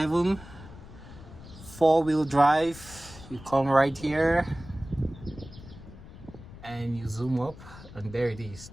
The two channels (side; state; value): left; noise; rumble, 17 dB below the sound